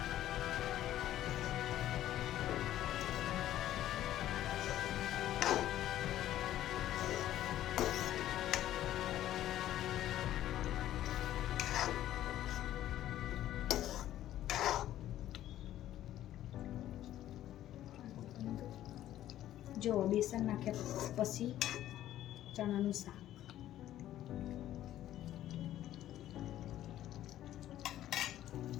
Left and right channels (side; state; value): right; quieter; 12.9 dB